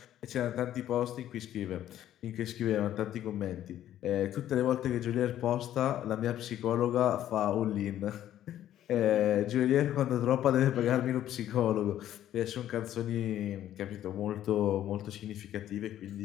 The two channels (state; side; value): quieter; right; 12.0 dB